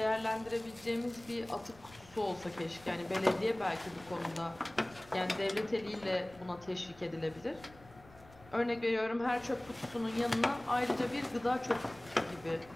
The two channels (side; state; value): left; noise; rumble, 23 dB below the sound